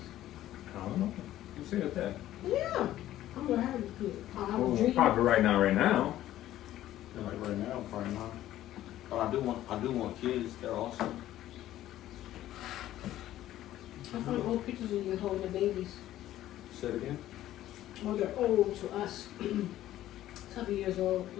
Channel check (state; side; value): quieter; right; 13.6 dB